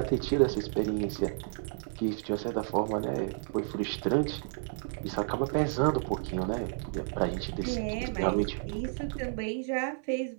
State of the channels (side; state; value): left; silent; 57 dB below the other